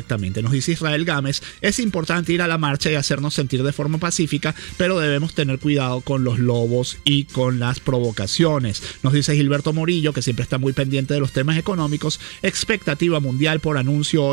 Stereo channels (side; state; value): left; quieter; 35.0 dB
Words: Nos dice Israel Gámez: es importante ir a la marcha y hacernos sentir de forma pacífica, pero debemos tener cuidado con los lobos y con las provocaciones. Nos dice Gilberto Morillo, que siempre está muy pendiente de los temas económicos: expectativa mundial por anuncio